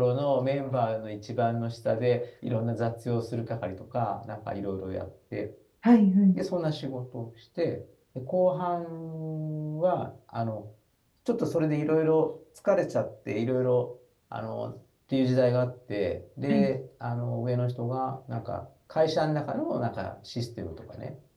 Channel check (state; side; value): identical; both; correlation 1.00